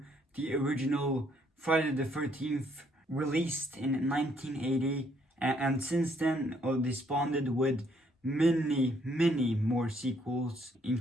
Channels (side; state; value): both; normal; correlation 0.68